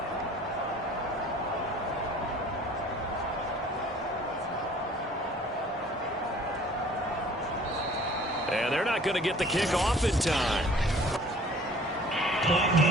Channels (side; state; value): both; normal; correlation 0.51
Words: And they're not going to get the kick off in time. Point